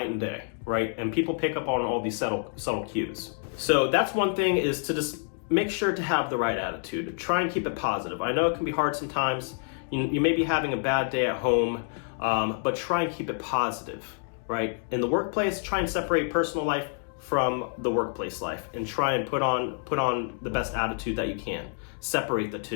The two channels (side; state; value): right; silent; 59 dB below the other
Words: and day, right? And people pick up on all these subtle cues. So that's one thing, is to just make sure to have the right attitude. Try and keep it positive. I know it can be hard sometimes. You may be having a bad day at home, but try and keep it positive, right? In the workplace, try and separate personal life from the workplace life and try and put on the best attitude that you can. Separate the